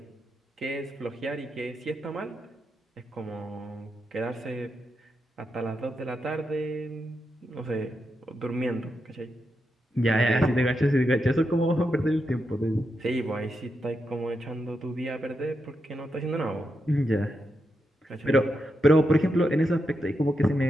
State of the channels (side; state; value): both; normal; correlation 0.85